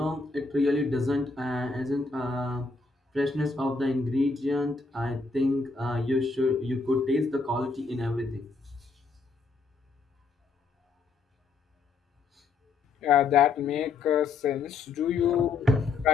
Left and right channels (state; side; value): quieter; right; 4.2 dB